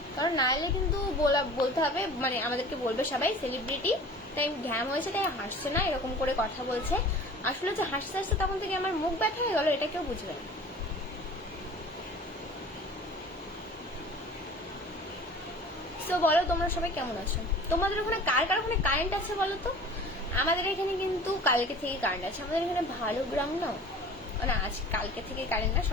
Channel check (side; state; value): both; normal; correlation 0.43